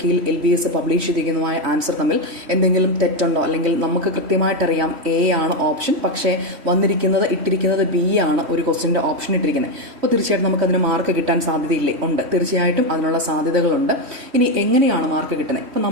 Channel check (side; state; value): left; late; 3.1 ms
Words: കീയിൽ LBS പബ്ലിഷ് ചെയ്തിരിക്കുന്നതുമായ ആൻസർ തമ്മിൽ എന്തെങ്കിലും തെറ്റുണ്ടോ, അല്ലെങ്കിൽ നമുക്ക് കൃത്യമായിട്ടറിയാം A ആണ് ഓപ്ഷൻ, പക്ഷേ ഇട്ടിരിക്കുന്നത് B ആണ് ഒരു ക്വസ്റ്റ്യൻ്റെ ഓപ്ഷൻ ഇട്ടിരിക്കുന്നത്. അപ്പോൾ തീർച്ചയായിട്ടും നമുക്കതിന് മാർക്ക് കിട്ടാൻ സാധ്യതയില്ലേ? ഉണ്ട്, തീർച്ചയായിട്ടും അതിനുള്ള സാധ്യതകളുണ്ട്. ഇനി എങ്ങനെയാണ് മാർക്ക് കിട്ടുന്നത്? ഇപ്പോൾ